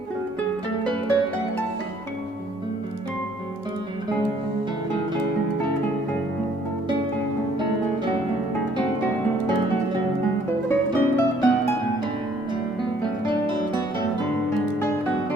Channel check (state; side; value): normal; both; correlation 0.62